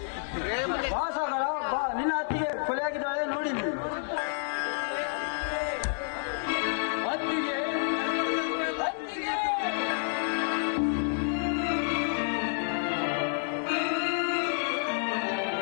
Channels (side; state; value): right; silent; digital silence